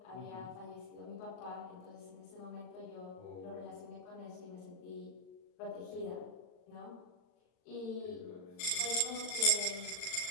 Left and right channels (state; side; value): late; right; 39 ms